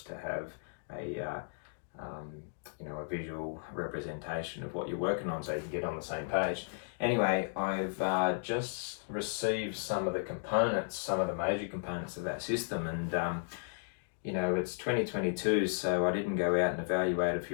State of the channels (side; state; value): right; silent; digital silence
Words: to have a a visual representation of what you're working on so you can get on the same page. Anyway, I've just received some of the components, some of the major components of that system, and it's 2022, so I didn't go out and evaluate a